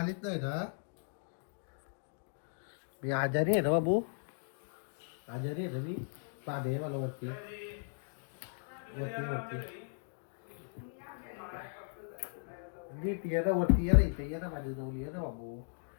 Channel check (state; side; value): silent; right; digital silence